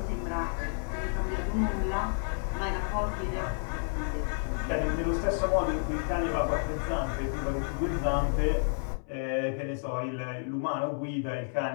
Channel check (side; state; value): right; silent; 57 dB below the other